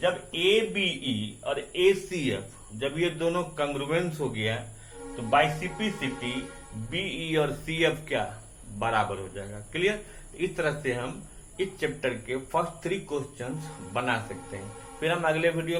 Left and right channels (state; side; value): identical; both; correlation 1.00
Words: ABE और ACF जब ये दोनों कंग्रुएंस हो गया तो बाइसिपिसिटी बीई और सीएफ क्या बराबर हो जाएगा। क्लियर। इस तरह से हम इस चैप्टर के फर्स्ट 3 क्वेश्चंस बना सकते हैं। फिर हम अगले वीडियो